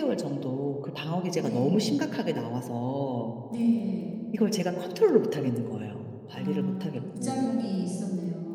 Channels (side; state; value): both; identical; correlation 1.00